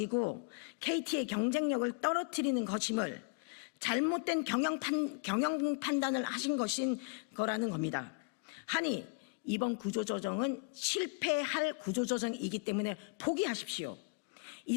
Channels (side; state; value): right; quieter; 32.9 dB